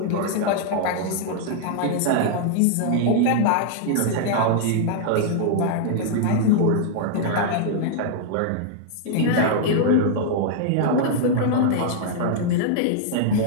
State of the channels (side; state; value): both; different; correlation -0.01